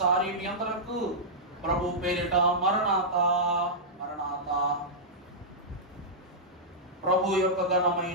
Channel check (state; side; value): normal; both; correlation -0.11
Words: మీ అందరకు ప్రభు పేరిట మరణాత మరణాత. ప్రభు యొక్క